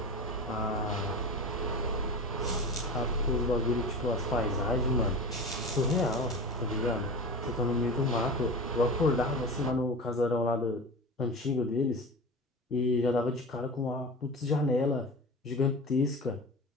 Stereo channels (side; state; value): both; normal; correlation 0.30